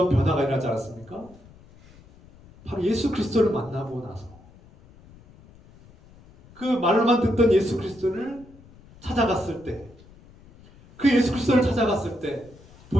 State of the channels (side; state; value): left; noise; rumble, 24 dB below the sound